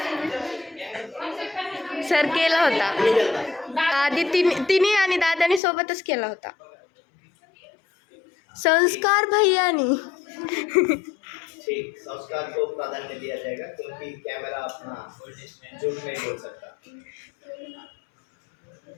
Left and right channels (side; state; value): right; drops out; at 5.6 s